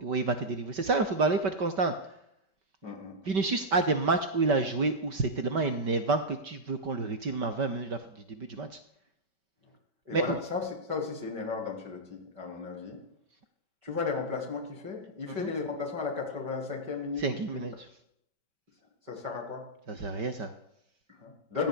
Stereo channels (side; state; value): left; late; 5.2 ms